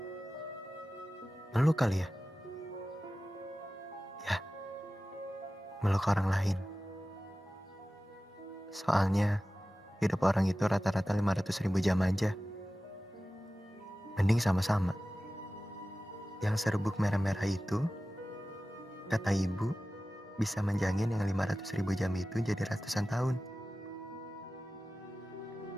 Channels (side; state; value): both; normal; correlation 0.96